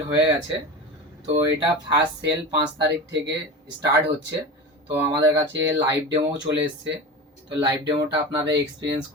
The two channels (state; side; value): normal; both; correlation 0.28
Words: হয়ে গেছে। তো এটা ফার্স্ট সেল 5 তারিখ থেকে স্টার্ট হচ্ছে। তো আমাদের কাছে লাইভ ডেমো চলে এসছে। তো লাইভ ডেমোটা আপনারা এক্সপিরিয়েন্স